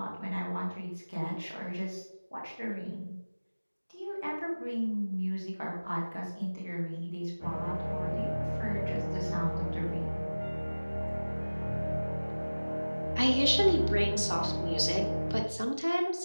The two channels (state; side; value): inverted; both; correlation -1.00